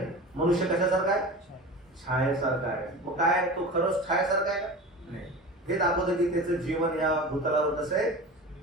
मनुष्य कशासारखा आहे, छायेसारखा आहे. मग काय तो खरंच छायेसारखा आहे का, नाही. हे दाखवतं की त्याचं जीवन या भूतलावर कसं आहे,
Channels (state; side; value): normal; both; correlation 0.33